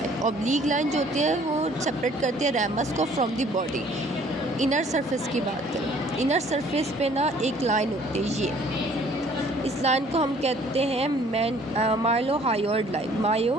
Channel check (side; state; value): both; normal; correlation 0.57